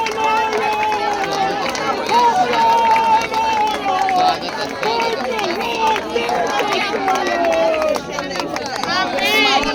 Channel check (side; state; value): both; identical; correlation 1.00